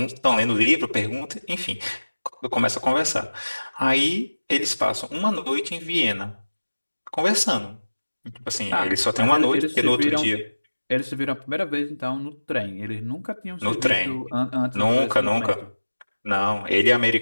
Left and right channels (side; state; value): both; inverted; correlation -1.00